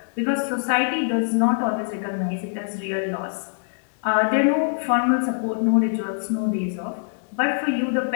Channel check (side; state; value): right; silent; 62 dB below the other